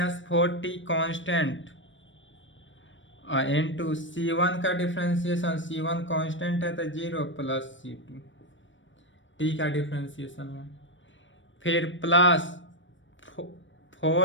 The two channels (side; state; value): right; late; 0.55 ms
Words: 4t constant into c1 का डिफ्रेंसिएशन, c1 कांस्टेंट है तो 0 प्लस c2 t का डिफ्रेंसिएशन है। फिर प्लस